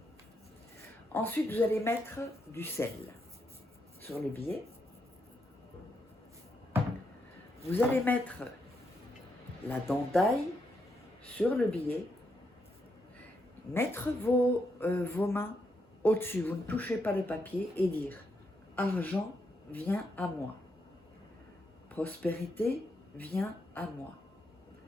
Ensuite, vous allez mettre du sel sur le billet. Vous allez mettre la dent d'ail sur le billet. Mettre vos mains au-dessus, vous ne touchez pas le papier et dire « Argent vient à moi ». Prospérité vient à moi.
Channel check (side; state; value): both; normal; correlation 0.80